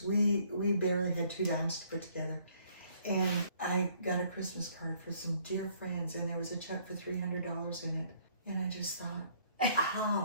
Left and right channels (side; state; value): both; inverted; correlation -0.63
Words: we barely had 2 dimes to put together, and I got a Christmas card for some dear friends, and there was a check for $300 in it, and I just thought,